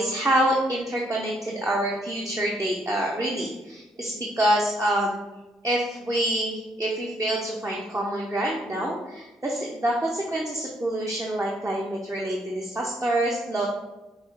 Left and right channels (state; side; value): normal; both; correlation 0.70